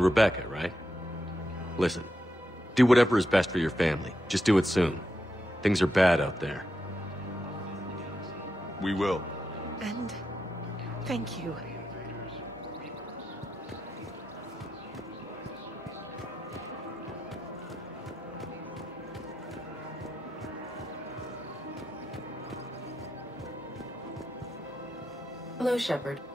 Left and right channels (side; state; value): both; normal; correlation 0.86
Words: Rebecca, right? Listen, do whatever is best for your family. Just do it soon. Things are bad out there. We will. And thank you. Hello, Shepard.